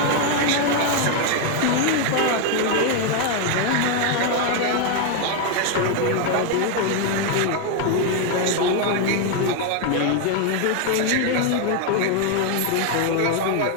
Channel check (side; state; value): both; different; correlation 0.01